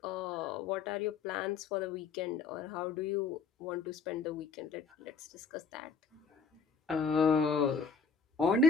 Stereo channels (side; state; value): right; quieter; 5.0 dB